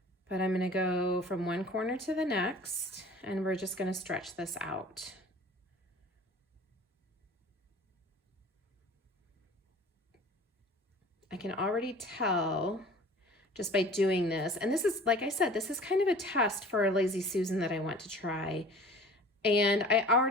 But I'm gonna go from one corner to the next, and we're just gonna stretch this out. I can already tell just by doing this, and this is, like I said, this is kind of a test for a Lazy Susan that I want to try. And I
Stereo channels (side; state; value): both; normal; correlation 0.44